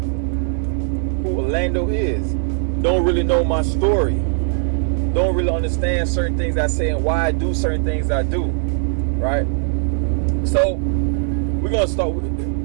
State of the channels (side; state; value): left; silent; digital silence